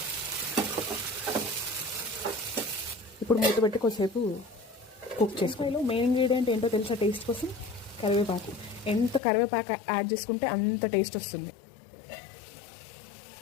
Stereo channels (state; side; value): drops out; right; at 9.2 s